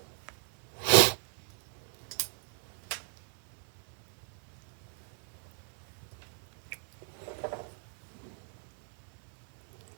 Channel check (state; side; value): silent; left; digital silence